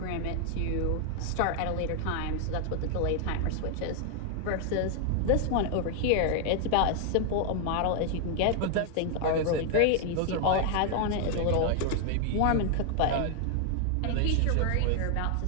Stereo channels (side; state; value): both; different; correlation 0.00